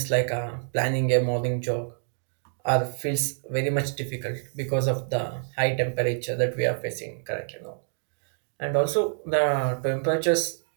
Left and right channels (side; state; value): left; silent; digital silence